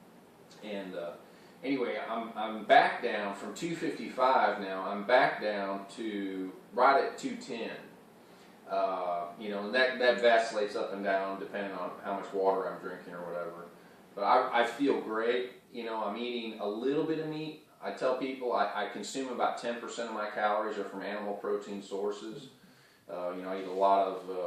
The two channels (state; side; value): identical; both; correlation 1.00